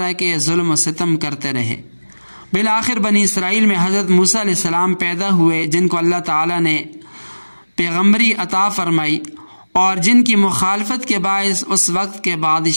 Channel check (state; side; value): inverted; both; correlation -1.00